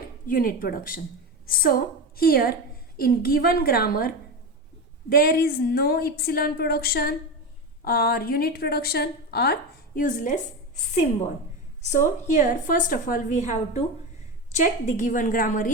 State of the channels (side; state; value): both; normal; correlation 0.20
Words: unit production. So here in given grammar there is no epsilon production or unit production or useless symbol. So here first of all we have to check the given grammar